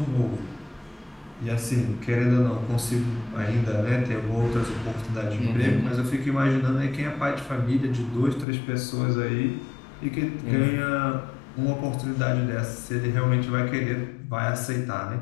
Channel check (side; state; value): right; drops out; at 8.5 s